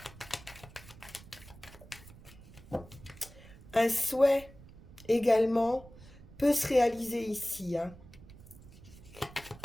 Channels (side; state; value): right; noise; rumble, 19 dB below the sound